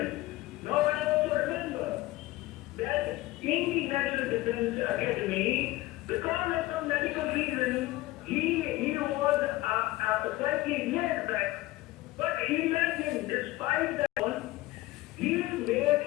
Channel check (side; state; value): right; quieter; 18.1 dB